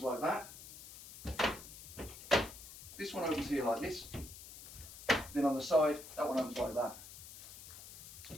like that. This one opens here like this. Then on the side, that one opens like that.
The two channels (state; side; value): noise; left; hiss, 14 dB below the sound